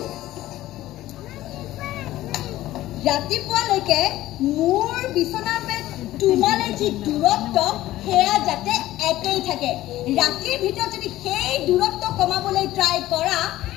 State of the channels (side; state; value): right; quieter; 15.4 dB